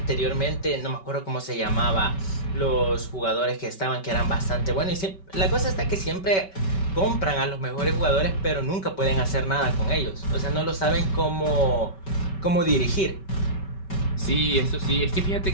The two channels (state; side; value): late; right; 5.2 ms